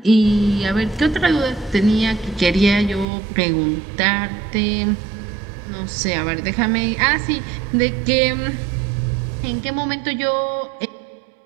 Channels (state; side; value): drops out; left; at 3.1 s